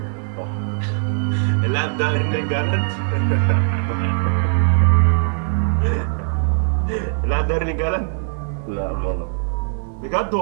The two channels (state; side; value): silent; left; digital silence